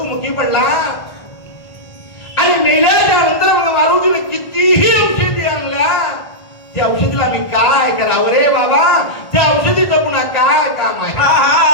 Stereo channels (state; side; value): late; right; 1.5 ms